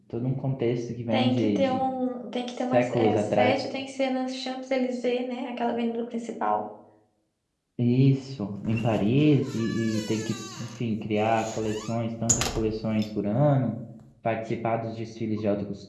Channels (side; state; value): both; identical; correlation 1.00